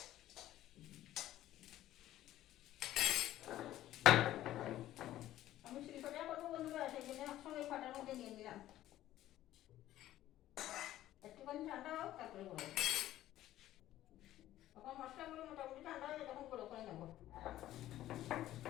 আমি শিলপাটা করবো বন্ধুরা, সেই জন্য একসঙ্গে ফাটার মধ্যে নিয়ে নিলাম। একটুখানি ঠান্ডা হোক তারপরে গুঁড়ো। তখন মশলাগুলো মোটামুটি ঠান্ডা হয়ে তখন গুঁড়ো করে নেবো।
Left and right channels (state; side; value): quieter; right; 13.9 dB